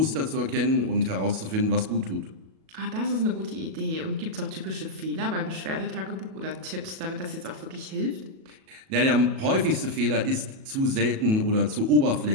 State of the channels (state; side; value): late; left; 37 ms